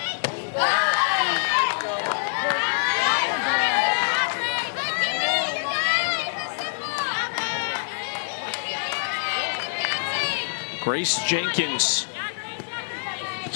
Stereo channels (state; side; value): silent; right; digital silence